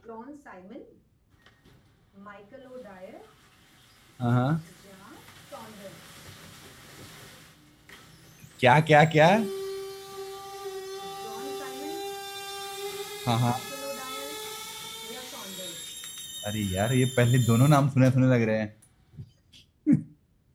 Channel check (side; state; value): both; identical; correlation 1.00